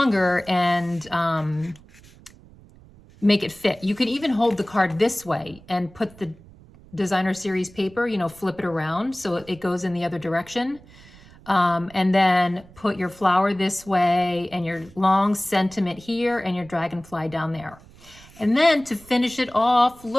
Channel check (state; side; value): noise; right; rumble, 23 dB below the sound